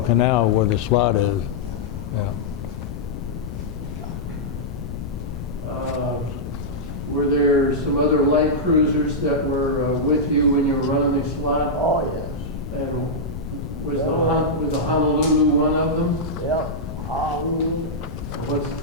where the slot is. Yeah. Were there some other light cruisers that were with you when you were running the Slot? Oh, yes. And was the Honolulu one of them? Yep.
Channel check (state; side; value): noise; left; rumble, 8 dB below the sound